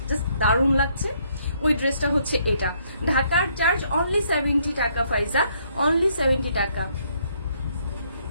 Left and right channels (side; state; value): both; inverted; correlation -0.69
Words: দারুণ লাগছে, ওই ড্রেসটা হচ্ছে এটা। ঢাকার চার্জ অনলি 70 টাকা ফাইজা, অনলি 70 টাকা।